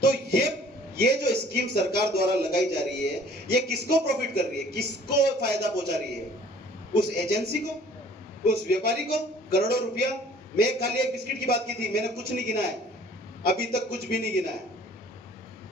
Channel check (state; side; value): normal; both; correlation 0.53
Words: तो ये जो स्कीम सरकार द्वारा लगाई जा रही है, ये किसको प्रॉफिट कर रही है? किसको फायदा पहुंचा रही है? उस एजेंसी को, उस व्यापारी को करोड़ों रुपया। मैं खाली एक बिस्किट की बात की थी, मैंने कुछ नहीं गिना है, अभी तक कुछ भी नहीं गिना है।